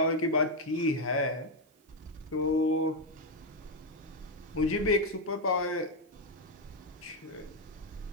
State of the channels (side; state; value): both; normal; correlation 0.04